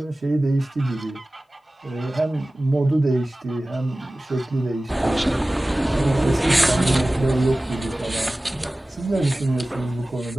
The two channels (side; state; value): both; normal; correlation 0.97